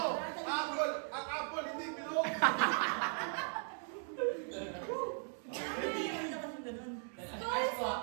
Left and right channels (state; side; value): silent; left; 52 dB below the other